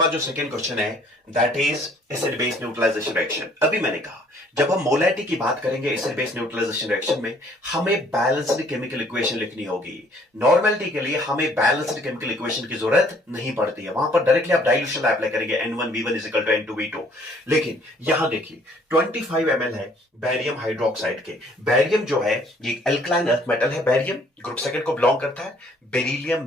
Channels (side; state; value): both; normal; correlation 0.60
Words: जो सेकंड क्वेश्चन है that is acid base neutralisation reaction. अभी मैंने कहा जब हम मोलैरिटी की बात करेंगे एसिड बेस न्यूट्रलाइजेशन रिएक्शन में हमें बैलेंस्ड केमिकल इक्वेशन लिखनी होगी। नॉर्मलिटी के लिए हमें बैलेंस्ड केमिकल इक्वेशन की जरूरत नहीं पड़ती है, वहां पर डायरेक्टली आप डाइल्यूशन अप्लाई करेंगे N1V1 N2V2। लेकिन यहां देखिए 25 ml है बैरियम हाइड्रोक्साइड के। बैरियम जो है ये एल्कलाइन अर्थ मेटल है, बैरियम ग्रुप सेकंड को बिलोंग करता है।